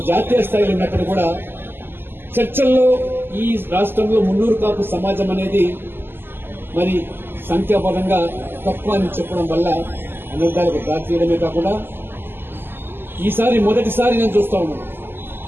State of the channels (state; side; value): late; left; 0.10 ms